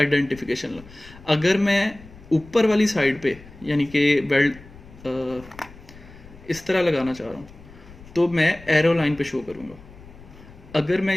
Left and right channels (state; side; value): noise; left; rumble, 20 dB below the sound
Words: लाइन। अगर मैं ऊपर वाली साइड पे यानी कि वेल्ड इस तरह लगाना चाह रहा हूँ तो मैं एरो लाइन पे शो करूँगा। अगर मैं